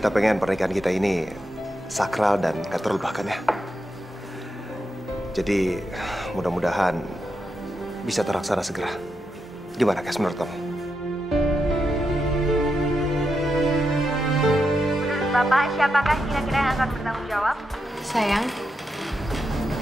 pengen pernikahan kita ini sakral dan gak terlupakan ya. Jadi, mudah-mudahan bisa terlaksana segera. Gimana, Kes, menurut kamu? Bapak, siapakah kira-kira yang akan bertanggung jawab? Sayang,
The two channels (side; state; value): both; normal; correlation 0.85